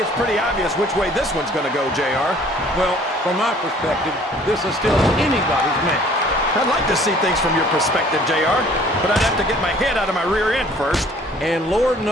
it's pretty obvious which way this one's going to go, JR. Well, from my perspective, this is still anybody's match. I'd like to see things from your perspective, JR, but I'd have to get my head out of my rear end first. And Lord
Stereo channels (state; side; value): normal; both; correlation 0.54